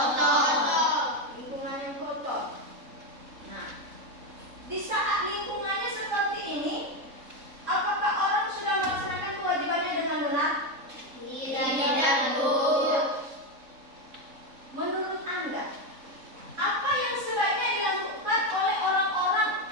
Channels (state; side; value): late; left; 3.7 ms